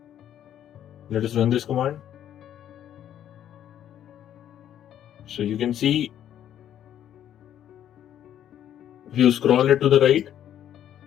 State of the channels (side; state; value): right; quieter; 10.6 dB